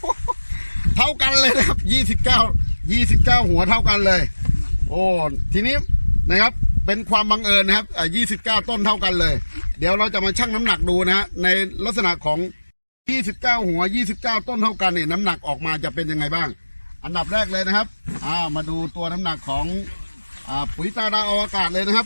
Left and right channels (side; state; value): both; inverted; correlation -1.00